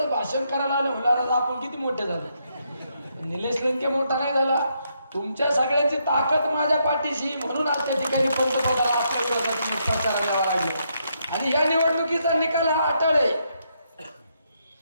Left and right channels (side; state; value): both; inverted; correlation -0.77